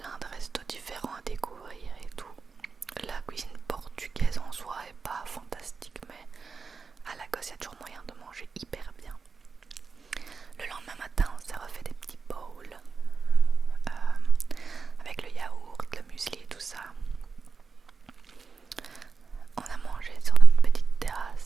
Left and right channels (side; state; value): left; quieter; 5.0 dB